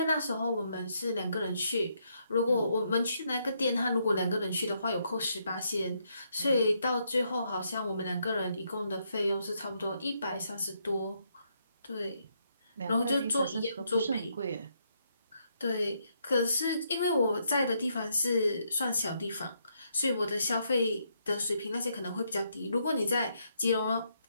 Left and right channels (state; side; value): inverted; both; correlation -0.75